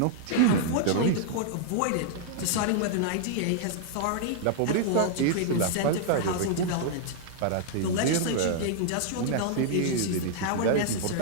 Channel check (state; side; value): different; both; correlation -0.01